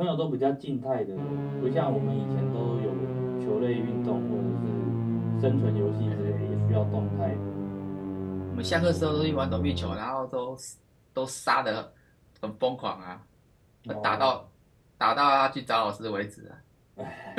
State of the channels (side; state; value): both; identical; correlation 1.00